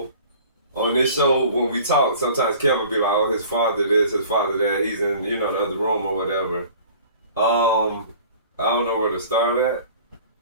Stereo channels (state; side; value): inverted; both; correlation -0.47